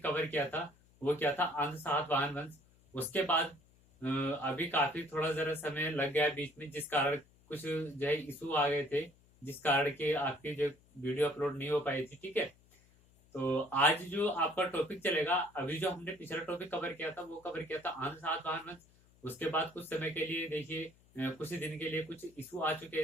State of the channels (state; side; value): noise; left; hum, 29 dB below the sound